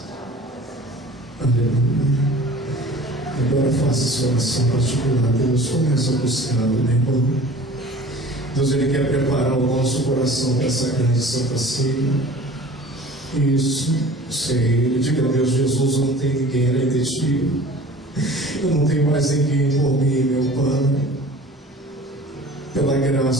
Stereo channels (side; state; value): both; normal; correlation 0.44